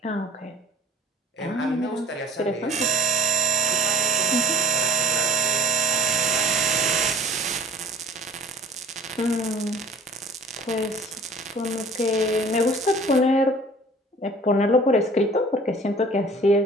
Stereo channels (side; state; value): both; normal; correlation 0.46